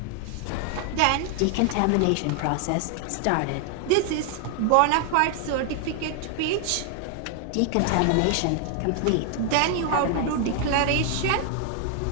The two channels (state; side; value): different; both; correlation 0.00